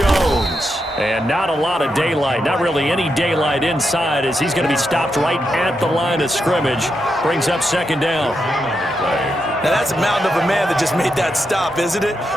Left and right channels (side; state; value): both; normal; correlation 0.84